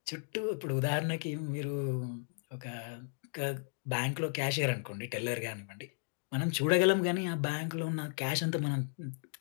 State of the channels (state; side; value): silent; right; 55 dB below the other